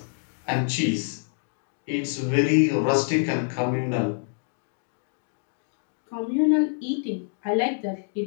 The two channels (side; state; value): right; silent; digital silence